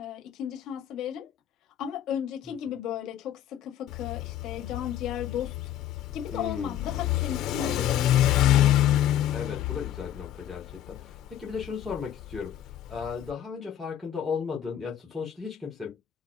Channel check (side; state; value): right; quieter; 11.0 dB